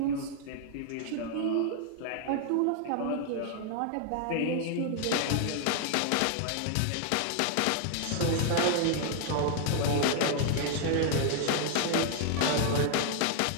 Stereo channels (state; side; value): different; both; correlation 0.00